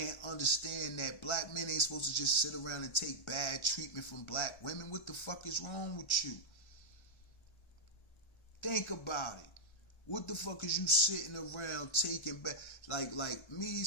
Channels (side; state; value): right; late; 1.3 ms